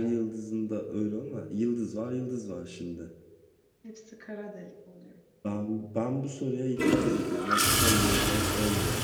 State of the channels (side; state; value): both; identical; correlation 1.00